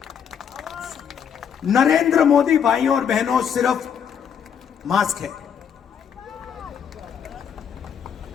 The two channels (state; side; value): quieter; right; 7.8 dB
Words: नरेंद्र मोदी भाइयों और बहनों सिर्फ मास्क है,